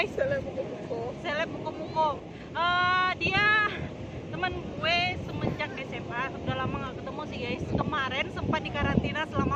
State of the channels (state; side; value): identical; both; correlation 1.00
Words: Seleb muko-muko. Dia teman gue semenjak SMA. Udah lama gak ketemu sih guys. Kemarin sempat di karantina